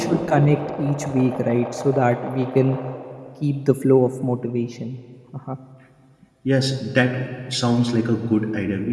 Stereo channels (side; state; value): both; identical; correlation 1.00